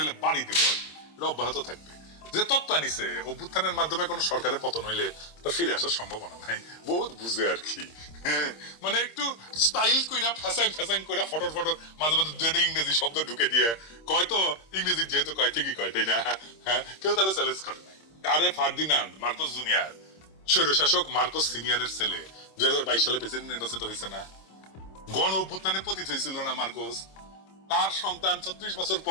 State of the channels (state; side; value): late; right; 26 ms